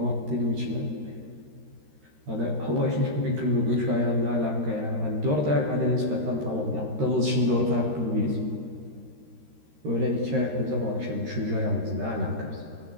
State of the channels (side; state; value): left; late; 13 ms